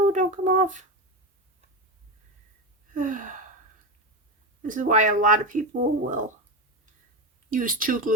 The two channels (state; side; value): normal; both; correlation 0.16